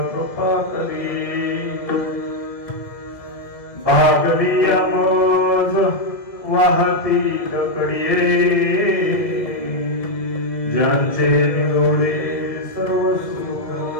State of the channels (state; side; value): late; right; 2.0 ms